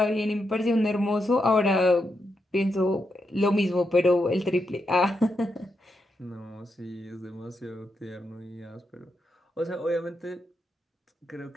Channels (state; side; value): normal; both; correlation 0.84